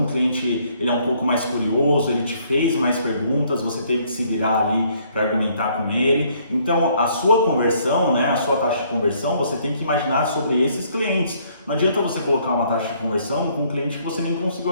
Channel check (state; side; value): inverted; both; correlation -0.65